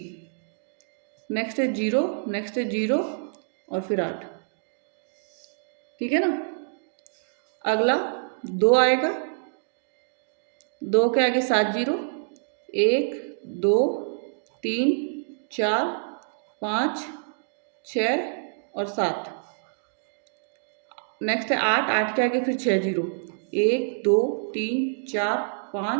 नेक्स्ट है 0, नेक्स्ट है 0 और फिर 8। ठीक है ना। अगला 2 आएगा, 2 के आगे 7 जीरो, 1 2 3 4 5 6 और 7। नेक्स्ट है 8, 8 के आगे फिर 6 जीरो, 1 2 3 4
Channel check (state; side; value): silent; left; digital silence